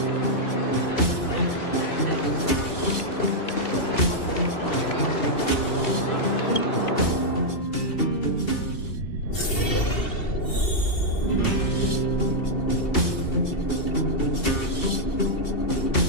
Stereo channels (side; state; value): right; late; 2.7 ms